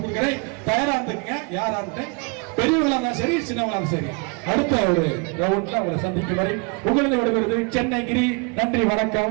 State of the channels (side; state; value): left; quieter; 33.0 dB